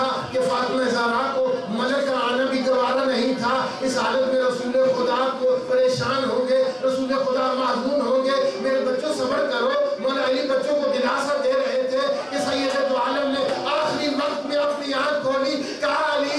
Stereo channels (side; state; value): both; identical; correlation 1.00